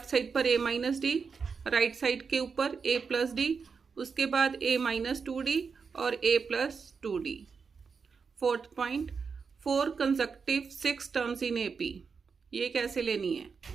साइड पर ए माइनस डी, राइट साइड के ऊपर ए प्लस डी, उसके बाद ए माइनस 2D और A plus 2D। Fourth point, 4 consecutive 6 terms in AP, ये कैसे लेनी है,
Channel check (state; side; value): quieter; left; 5.5 dB